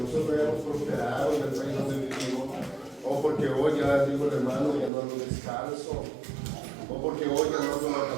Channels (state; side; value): drops out; left; at 4.9 s